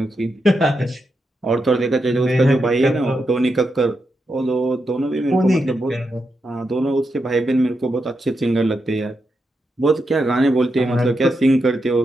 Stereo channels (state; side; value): normal; both; correlation 0.85